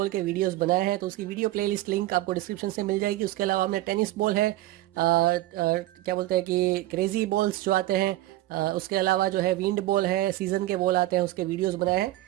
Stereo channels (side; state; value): left; quieter; 16.0 dB